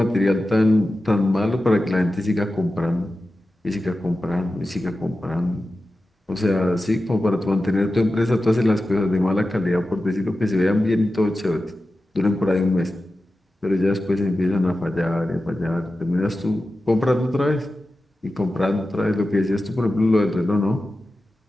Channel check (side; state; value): both; normal; correlation 0.93